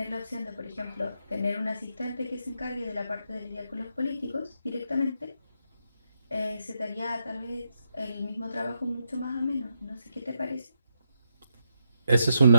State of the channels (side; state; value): both; inverted; correlation -0.80